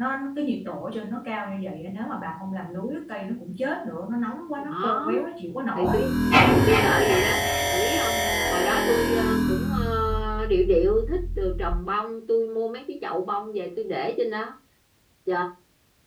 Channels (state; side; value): identical; both; correlation 1.00